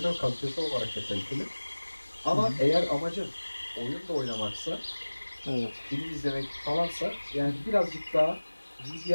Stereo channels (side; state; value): both; inverted; correlation -1.00